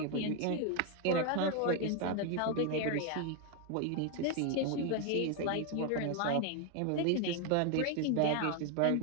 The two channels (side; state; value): both; different; correlation 0.01